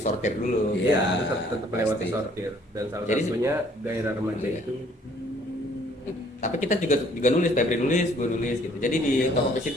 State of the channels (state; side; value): normal; both; correlation 0.60